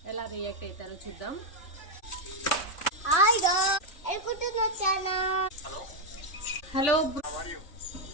ఎలా రియాక్ట్ అవుతారో చూద్దాం. హలో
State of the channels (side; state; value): right; late; 3.0 ms